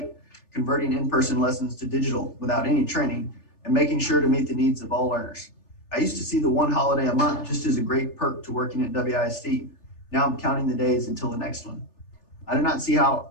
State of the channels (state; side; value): late; right; 3.4 ms